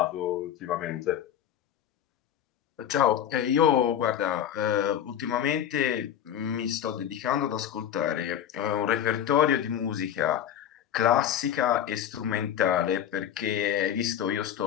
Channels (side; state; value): right; quieter; 10.0 dB